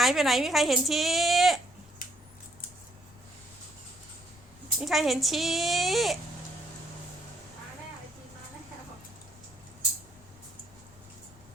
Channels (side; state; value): left; noise; rumble, 23 dB below the sound